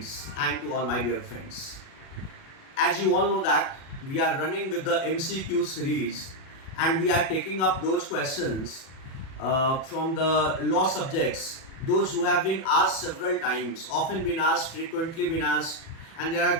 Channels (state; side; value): late; right; 37 ms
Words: and to all my dear friends. As you all know that we are running with the MCQ series and we are taking up those questions from the law subjects, those who have been asked several times, often been asked, frequently been asked, and there